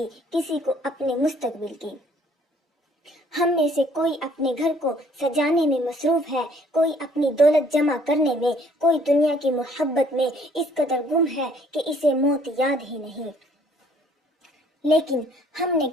کسی کو اپنے مستقبل کی۔ ہم میں سے کوئی اپنے گھر کو سجانے میں مصروف ہے، کوئی اپنی دولت جمع کرنے میں، کوئی دنیا کی محبت میں اس قدر گم ہے کہ اسے موت یاد ہی نہیں۔ لیکن ہم نے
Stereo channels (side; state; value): both; normal; correlation 0.60